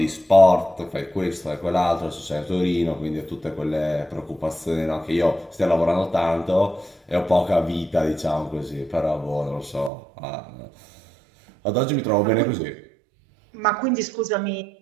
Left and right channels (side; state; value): left; drops out; at 9.9 s